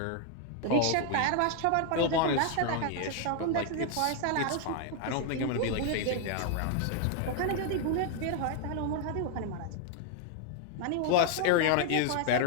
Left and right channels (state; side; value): different; both; correlation 0.00